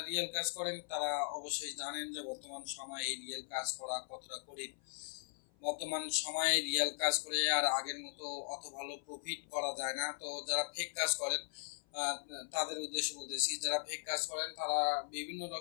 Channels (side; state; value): right; silent; 52 dB below the other